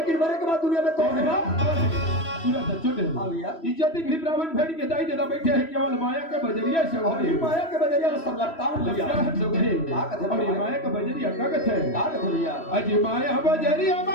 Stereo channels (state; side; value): late; right; 3.1 ms